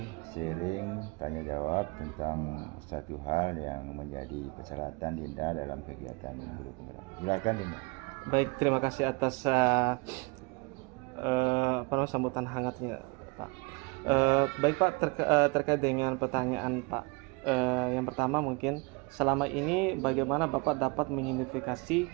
sharing, tanya jawab tentang satu hal yang menjadi persyaratan Dinda dalam kegiatan guru penggerak. Silakan Dinda. Baik, terima kasih atas sambutan hangatnya Pak. Baik Pak, terkait dengan pertanyaan Pak, yang pertama mungkin selama ini bagaimana Bapak dapat mengidentifikasi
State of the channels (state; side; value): quieter; left; 28.6 dB